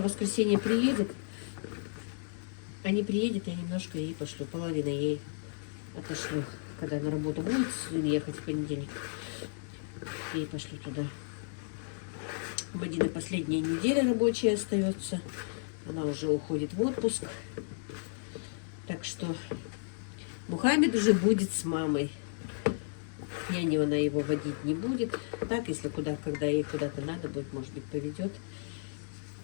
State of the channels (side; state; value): right; silent; digital silence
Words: в воскресенье приедет. А не приедет, я немножко ей пошлю. Половину ей отошлю. Когда на работу будет ехать в понедельник, ей пошлю туда. У Мадины последняя неделя рабочая остается. Она уже уходит в отпуск. Так что Мухаммед уже будет с мамой. Няню она его водить не будет. Так, если когда ей куда-то надо будет, может быть, поведет.